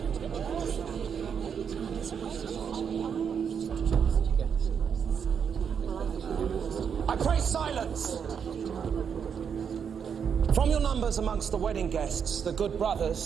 I pray silence! From your numbers amongst the wedding guests, the good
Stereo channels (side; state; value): left; quieter; 7.2 dB